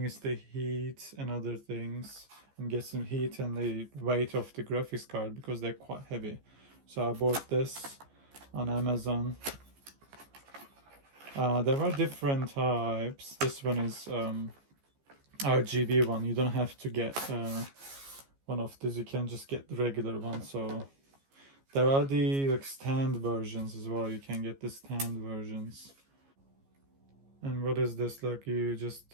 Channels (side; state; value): left; late; 15 ms